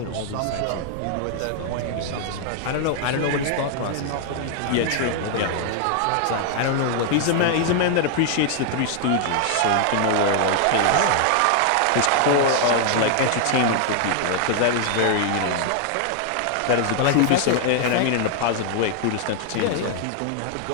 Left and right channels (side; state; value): both; different; correlation 0.00